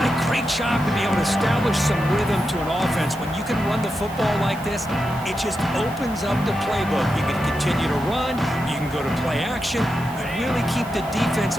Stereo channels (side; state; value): right; noise; hiss, 20 dB below the sound